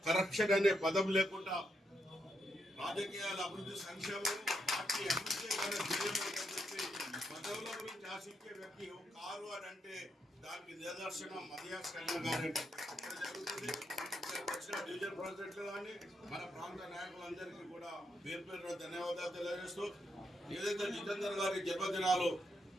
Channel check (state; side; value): normal; both; correlation 0.81